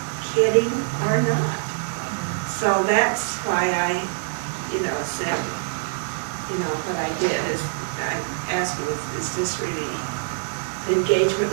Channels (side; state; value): left; silent; 62 dB below the other